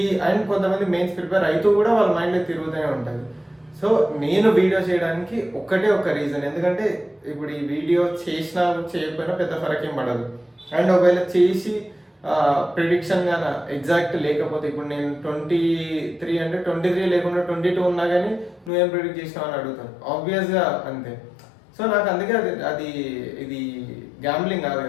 అండ్ కొంతమంది మెయిన్స్ ప్రిపేర్ అవుతూ కూడా వాళ్ళ మైండ్లో తిరుగుతూనే ఉంటుంది. సో నేను వీడియో చేయడానికి ఒక్కటే ఒక రీజన్, ఎందుకంటే ఇప్పుడు ఈ వీడియో చేసినా చేయకపోయినా పెద్ద ఫరక్ ఏం పడదు. అండ్ ఒకవేళ చేసి ప్రిడిక్షన్ గాన ఎగ్జాక్ట్ లేకపోతే, ఇప్పుడు నేను 23 అంటే 23 లేకుండా 22 ఉన్నా కానీ నువ్వేం ప్రిడిక్ట్ చేసినావు అని అడుగుతాను, ఆబ్వియస్గా అంతే. సో నాకు అందుకే ఇది గ్యాంబ్లింగ్ కాదు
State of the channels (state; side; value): drops out; right; at 18.7 s